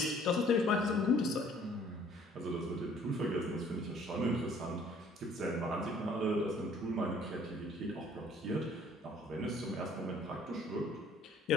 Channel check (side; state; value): both; normal; correlation 0.57